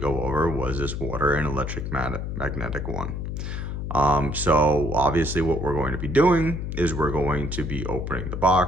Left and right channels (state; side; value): noise; left; hum, 4 dB below the sound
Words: over was this water and electric magnetic one. So obviously what we're going to be doing is we're going to be opening the